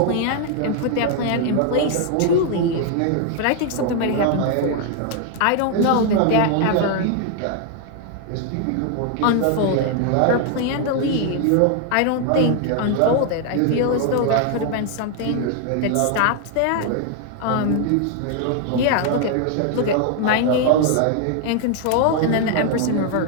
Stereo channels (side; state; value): both; different; correlation 0.00